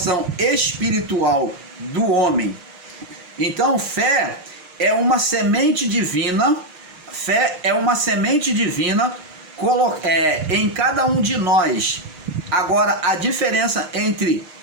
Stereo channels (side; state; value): left; late; 6.5 ms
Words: espiritual do homem. Então, fé é uma semente divina, em cada um de nós. Agora, a diferença entre